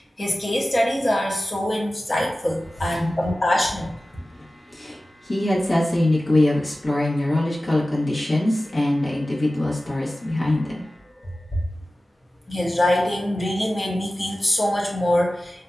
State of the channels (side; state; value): both; normal; correlation 0.96